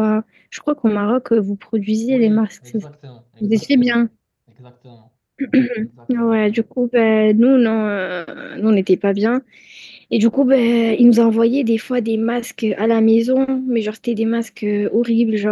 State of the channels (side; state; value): both; identical; correlation 1.00